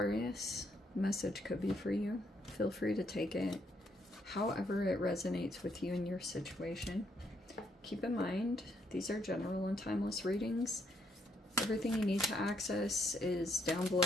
Message could be for you. Feel free to take it however it resonates with you in your situation. Keep in mind, these are general and timeless readings. Everything you need to access is down below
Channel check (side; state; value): both; normal; correlation 0.74